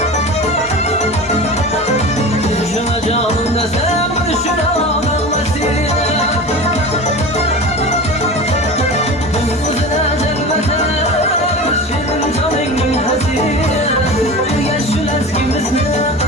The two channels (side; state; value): both; normal; correlation 0.32